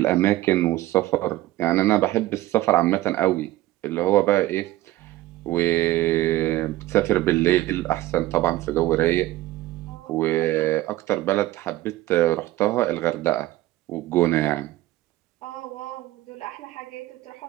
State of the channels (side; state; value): left; quieter; 16.3 dB